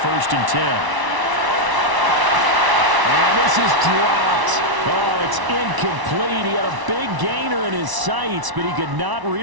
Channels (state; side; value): late; left; 1.0 ms